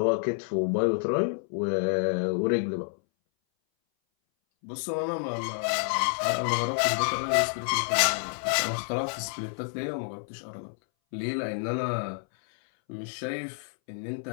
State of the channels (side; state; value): right; silent; 59 dB below the other